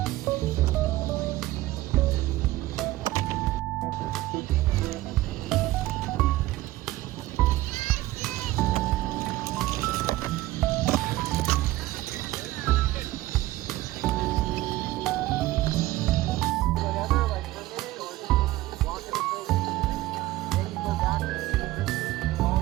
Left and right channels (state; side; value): quieter; left; 17.0 dB